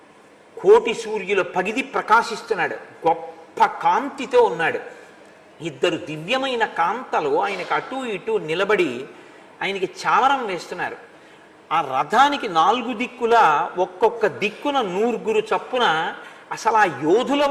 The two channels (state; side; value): identical; both; correlation 1.00